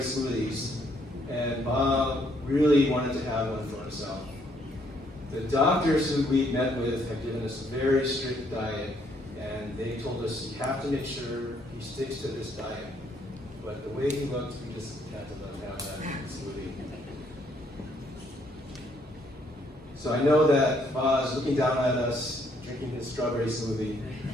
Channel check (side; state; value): both; normal; correlation 0.69